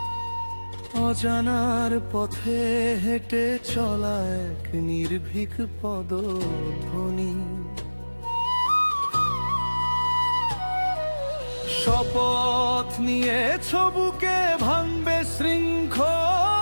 অজানার পথে হেঁটে চলা এক নির্ভীক পদধ্বনি। শপথ নিয়েছ বুকে ভাঙবে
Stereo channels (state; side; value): inverted; both; correlation -1.00